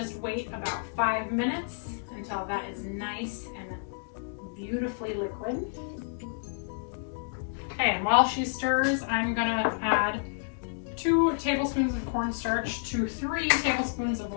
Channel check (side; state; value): right; silent; digital silence